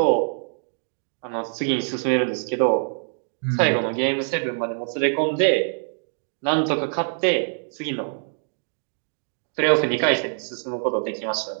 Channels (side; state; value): left; silent; digital silence